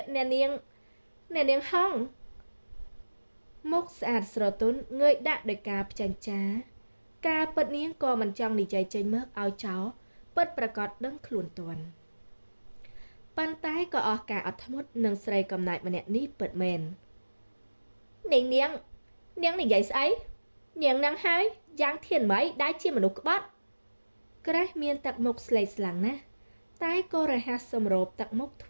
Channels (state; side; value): inverted; both; correlation -1.00